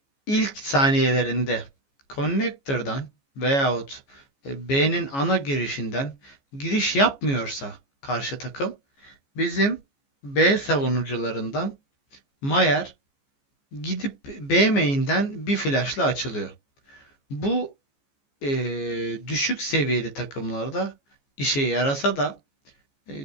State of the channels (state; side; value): late; right; 14 ms